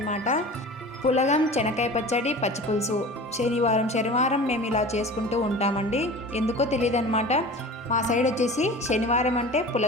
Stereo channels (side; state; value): both; normal; correlation 0.37